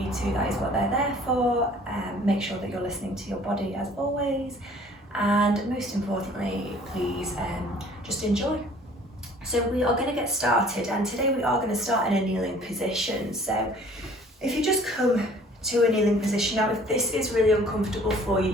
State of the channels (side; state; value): both; normal; correlation 0.53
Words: to. That is what they're there for. Make sure that you're listening to your body as always, and most importantly, please just enjoy. So we are going to get started, and today we are going to start in a kneeling position. So if you just come to a kneeling position, now if this is really uncomfortable for you,